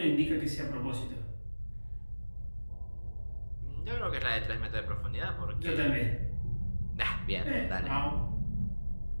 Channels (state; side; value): inverted; both; correlation -1.00